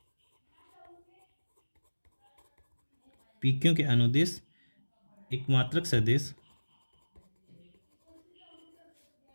पी क्यू के अनुदिश एक मात्रक सदिश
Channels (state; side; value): inverted; both; correlation -1.00